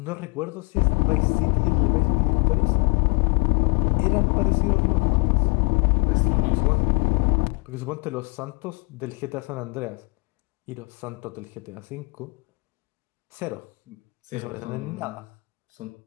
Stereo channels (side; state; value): right; quieter; 31.0 dB